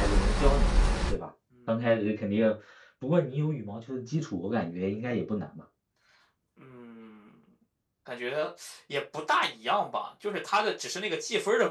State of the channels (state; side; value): identical; both; correlation 1.00